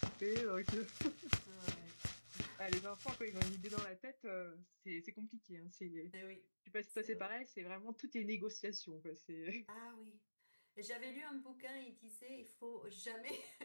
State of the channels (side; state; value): both; inverted; correlation -1.00